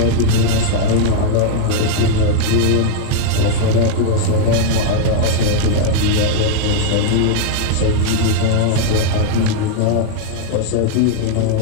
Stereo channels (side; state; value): both; different; correlation 0.00